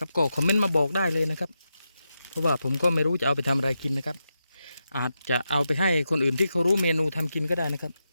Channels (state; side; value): inverted; both; correlation -0.88